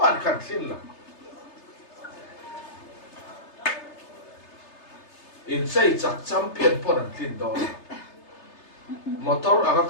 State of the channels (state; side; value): late; right; 3.3 ms